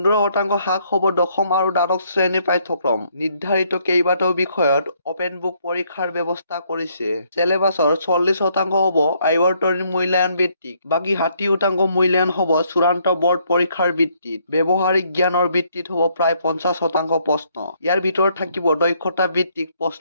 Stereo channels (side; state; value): both; inverted; correlation -0.69